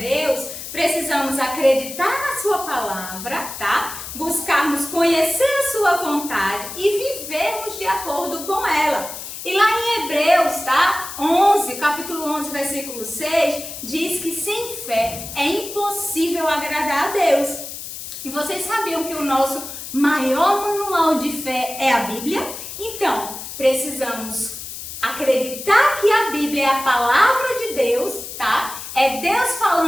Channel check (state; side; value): noise; left; hiss, 10 dB below the sound